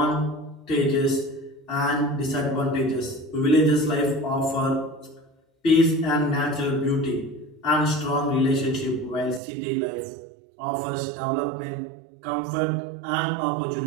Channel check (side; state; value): left; drops out; at 9.4 s